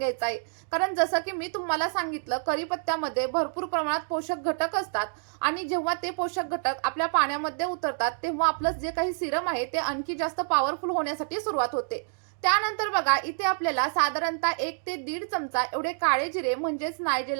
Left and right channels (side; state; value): left; silent; digital silence